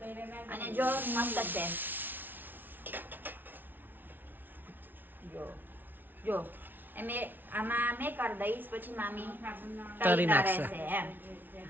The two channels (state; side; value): late; left; 0.090 ms